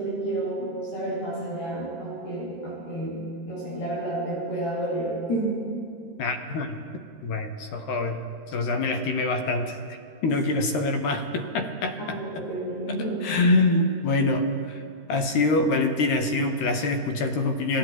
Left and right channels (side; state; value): right; late; 13 ms